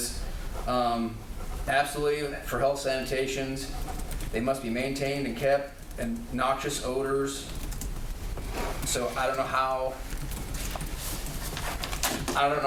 absolutely for health sanitations, they must be maintained and kept, and noxious odors. So I don't know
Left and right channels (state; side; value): identical; both; correlation 1.00